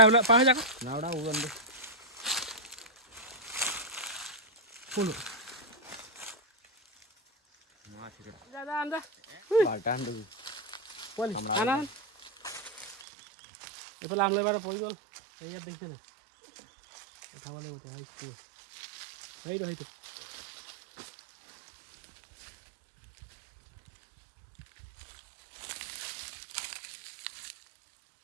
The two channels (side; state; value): left; drops out; at 13.1 s